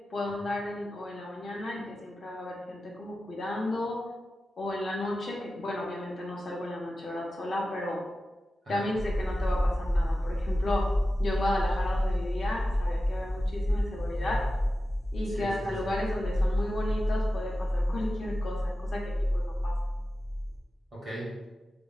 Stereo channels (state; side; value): normal; both; correlation 0.94